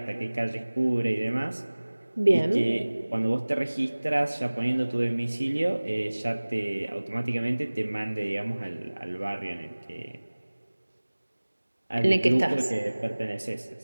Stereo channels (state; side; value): inverted; both; correlation -1.00